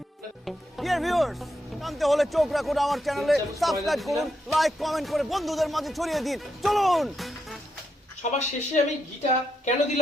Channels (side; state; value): both; normal; correlation 0.82